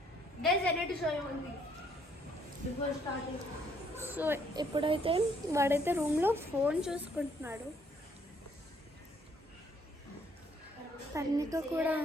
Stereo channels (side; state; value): both; normal; correlation 0.67